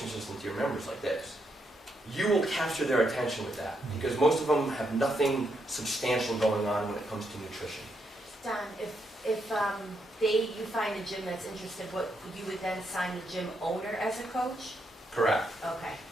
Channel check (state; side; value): normal; both; correlation 0.79